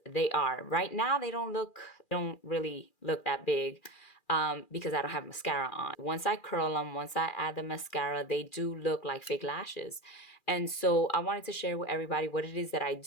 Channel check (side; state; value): right; late; 2.4 ms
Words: they are. Right now, they don't really look that big because I don't have mascara on. Once I curl them, once I add the mascara, they do look like fake lashes. And so I wanted to share with everybody what it is that I